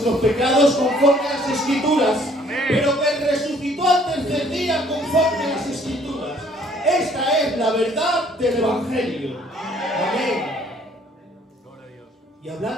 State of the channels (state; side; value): normal; both; correlation 0.60